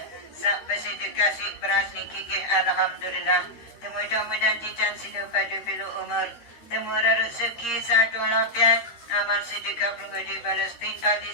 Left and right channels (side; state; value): right; late; 13 ms